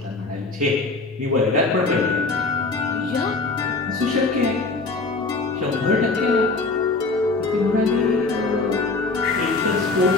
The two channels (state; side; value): quieter; right; 3.6 dB